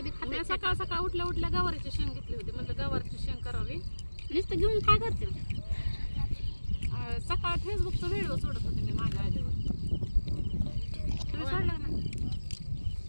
खाते सकाळ सकाळ उठल्या गवारीची शेंग घेतली होती म्हणजे गवारीची शेंग करावी नुसतं घेऊन काय करते सकाळ फेसबुकचा व्हिडिओ सोडत होते मी माझ्या आईवर तुम्ही सोडला ना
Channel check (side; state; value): both; inverted; correlation -1.00